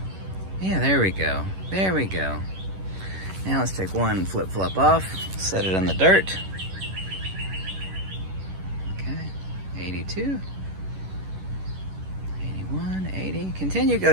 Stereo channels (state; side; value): late; left; 11 ms